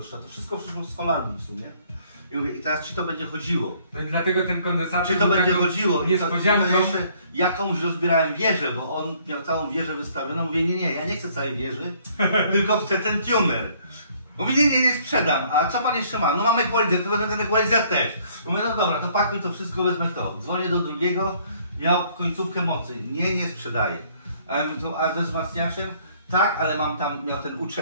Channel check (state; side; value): inverted; both; correlation -0.62